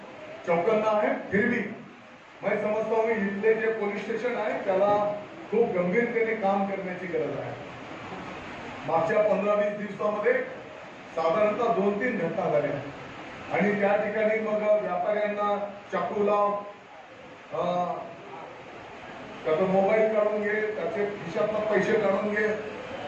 चौकन्ना है, फिर भी मैं समजता हूँ इथले जे पोलीस स्टेशन आहे त्याला खूप गंभीरतेने काम करण्याची गरज आहे। मागच्या 15-20 दिवसामध्ये साधारणतः 2-3 घटना झाल्या आणि त्या ठिकाणी मग व्यापाऱ्यांना चाकूला त्याचा मोबाईल काढून घे, त्याचे खिशातला पैसे काढून घे,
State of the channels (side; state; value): both; identical; correlation 1.00